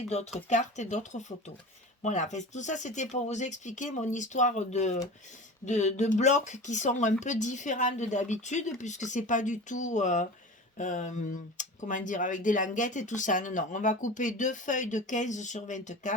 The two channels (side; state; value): both; normal; correlation 0.34